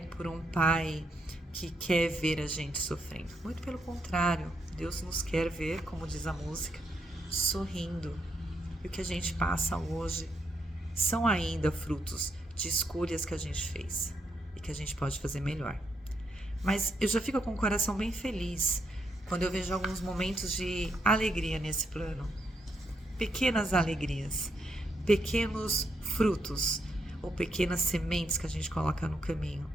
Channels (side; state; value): both; normal; correlation 0.78